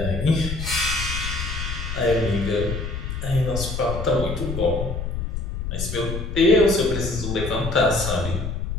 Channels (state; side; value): noise; left; rumble, 4 dB below the sound